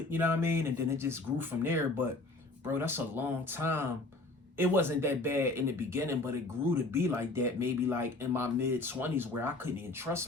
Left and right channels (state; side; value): quieter; right; 3.1 dB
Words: you know what I mean? And then it just grew from there. But, bro, that's a long time. It wasn't that bad in the beginning, but it grew to be like that maybe like in my mid-20s where I couldn't even trust